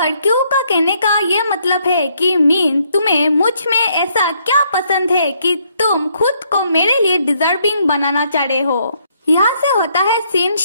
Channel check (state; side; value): inverted; both; correlation -0.71